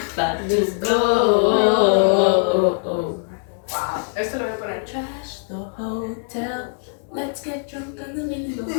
but let's go. Wow. Esto lo voy a poner. Trash the hotel. Let's get drunk on the window.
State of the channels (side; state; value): right; silent; digital silence